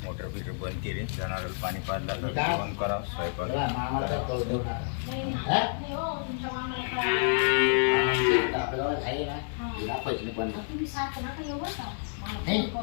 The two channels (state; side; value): silent; right; 58 dB below the other